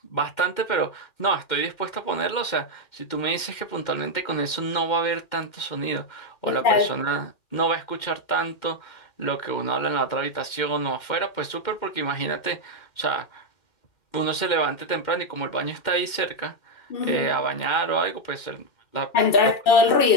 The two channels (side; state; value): right; late; 2.1 ms